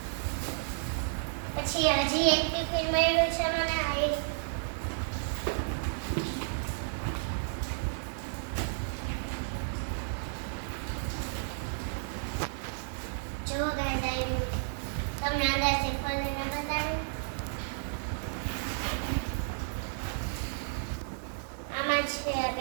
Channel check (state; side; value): silent; left; digital silence